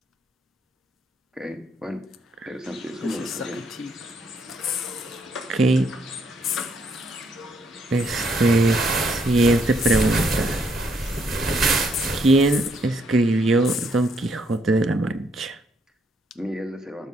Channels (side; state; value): both; normal; correlation 0.72